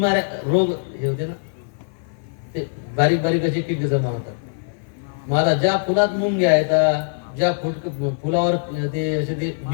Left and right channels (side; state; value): right; silent; 55 dB below the other